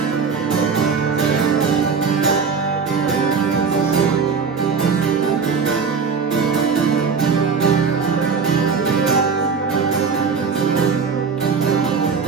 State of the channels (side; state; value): left; quieter; 5.6 dB